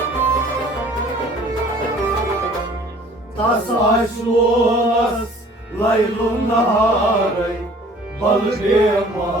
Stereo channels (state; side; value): normal; both; correlation 0.51